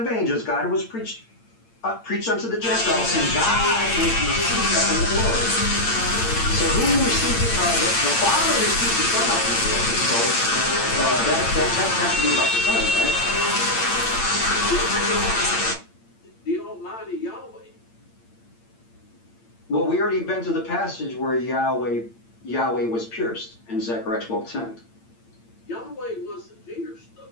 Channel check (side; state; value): right; late; 8.8 ms